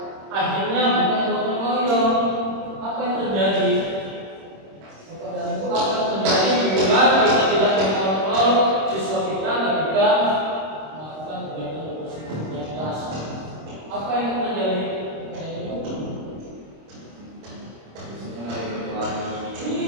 akhirnya bukan gotong royong. Apa yang terjadi? Dan itu akan terjadi bila kita tidak mengontrol siswa kita ketika melakukan kegiatan berbasis kelas. Apa yang terjadi?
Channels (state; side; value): late; left; 26 ms